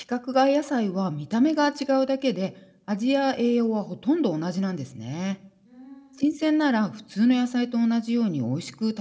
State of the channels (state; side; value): identical; both; correlation 1.00